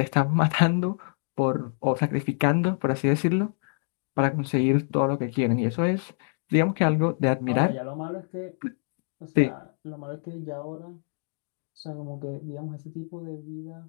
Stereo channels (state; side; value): silent; right; 60 dB below the other